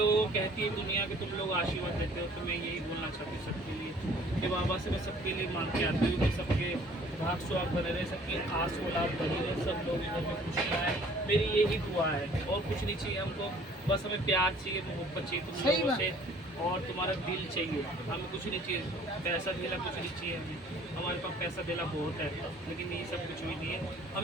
को कहती है दुनिया के तुम लोग आशीर्वाद देते हो तो मैं यही बोलना चाहती हूँ सबके लिए कि बाबा से मैं सबके लिए मान के आती हूँ कि सबके भाग सुहाग बने रहे सबकी आस औलाद बनी रहे सब लोग इधर में खुशियाँ आए मेरी यही दुआ है और कुछ नहीं चाहिए हमको बस हमें प्यार चाहिए मोहब्बत चाहिए तुम सही लोगों बात। से और तुम्हारा दिल चाहिए हमें कुछ नहीं चाहिए पैसा देना कुछ नहीं चाहिए हमें हमारे पास पैसा देना बहुत है लेकिन ये सब कुछ भी नहीं है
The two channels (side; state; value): both; normal; correlation 0.54